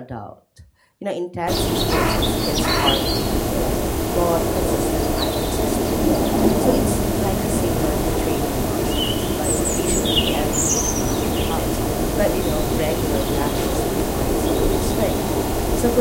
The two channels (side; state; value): both; identical; correlation 1.00